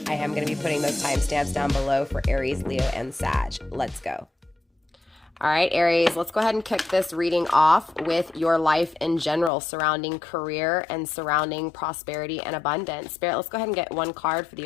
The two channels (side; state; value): right; drops out; at 9.5 s